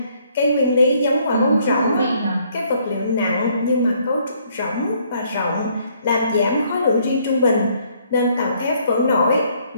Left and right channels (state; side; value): inverted; both; correlation -0.66